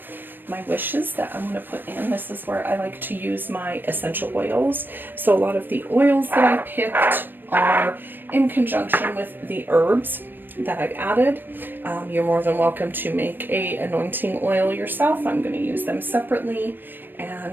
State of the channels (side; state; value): left; late; 0.094 ms